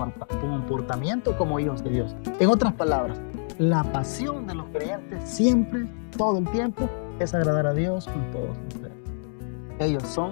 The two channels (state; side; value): silent; right; digital silence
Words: como hijos de Dios. En otras palabras, la pasión de los creyentes siempre, todo el tiempo, es agradar a Dios con todos ustedes. Ellos